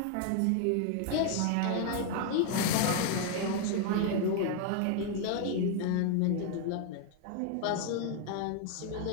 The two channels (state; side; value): different; both; correlation 0.00